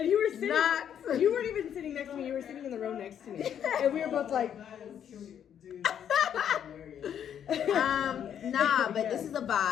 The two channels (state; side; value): quieter; right; 9.2 dB